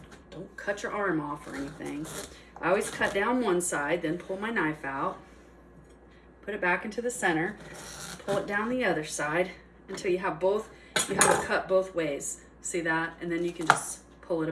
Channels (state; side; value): identical; both; correlation 1.00